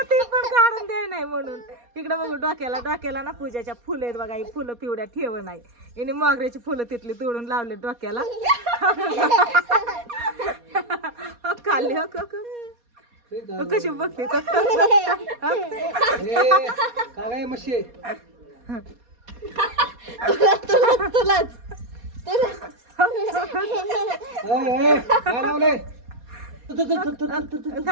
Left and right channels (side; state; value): left; late; 4.2 ms